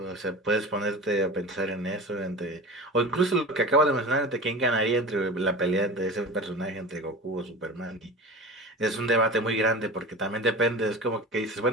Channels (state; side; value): normal; both; correlation 0.33